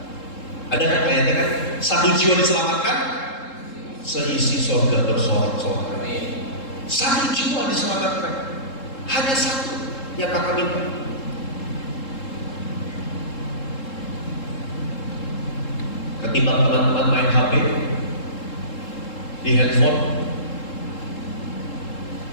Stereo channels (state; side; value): late; right; 3.7 ms